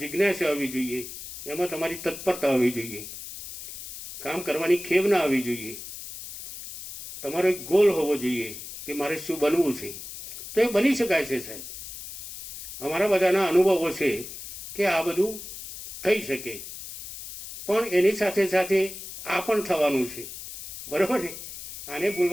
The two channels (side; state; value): left; noise; hiss, 11 dB below the sound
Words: આવવી જોઈએ, એમાં તમારી તત્પરતા આવવી જોઈએ, કામ કરવાની ખેવ ના આવવી જોઈએ. તમારો એક ગોલ હોવો જોઈએ કે મારે શું બનવું છે. તો એ બની શકાય છે સાહેબ. અમારા બધાના અનુભવો છે કે આ બધું થઈ શકે. પણ એની સાથે સાથે આ પણ થવાનું છે, બરાબર ને? આને